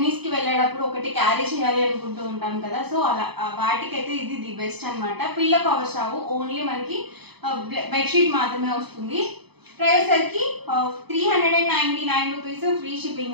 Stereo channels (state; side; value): late; left; 0.98 ms